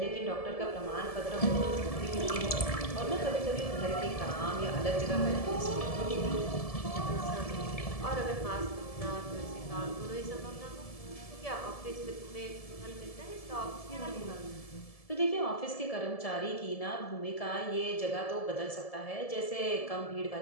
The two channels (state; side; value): late; right; 1.7 ms